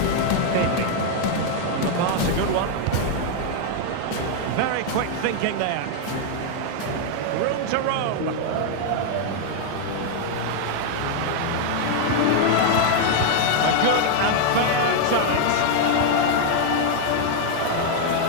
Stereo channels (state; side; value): different; both; correlation 0.00